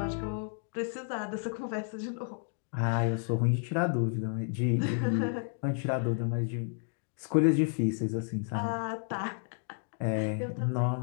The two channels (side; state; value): right; silent; 57 dB below the other